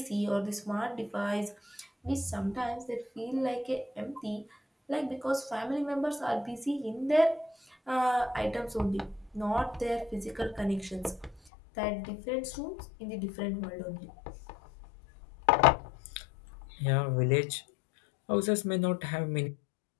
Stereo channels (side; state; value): right; drops out; at 11.4 s